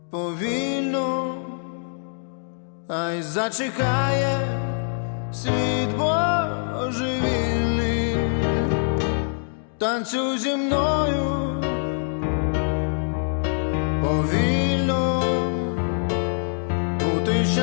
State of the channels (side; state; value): right; silent; digital silence